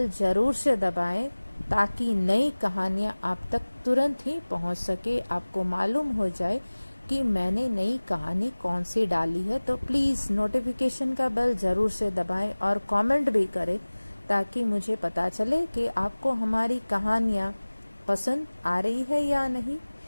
जरूर से दबाएं ताकि नई कहानियां आप तक तुरंत ही पहुंच सके। आपको मालूम हो जाए कि मैंने नई कहानी कौन सी डाली है। तो प्लीज नोटिफिकेशन का बेल जरूर से दबाएं और कमेंट भी करें ताकि मुझे पता चले कि आपको हमारी कहानियां पसंद आ रही है या नहीं।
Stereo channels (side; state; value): both; inverted; correlation -1.00